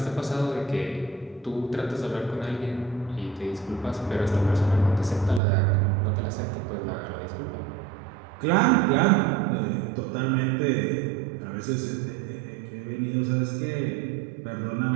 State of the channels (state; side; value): drops out; left; at 5.4 s